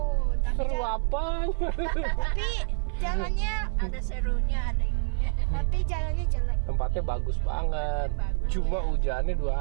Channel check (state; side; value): silent; left; 56 dB below the other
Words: Seru apa? Tapi jalannya, Ada serunya, ada ininya. tapi jalannya jelek. Tempatnya bagus banget. Cuma hujannya 2